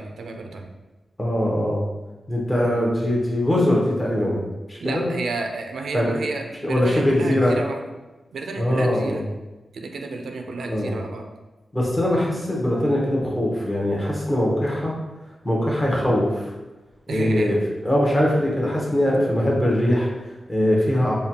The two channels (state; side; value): normal; both; correlation 0.91